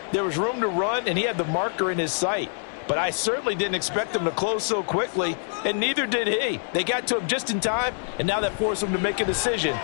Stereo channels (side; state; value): right; silent; 62 dB below the other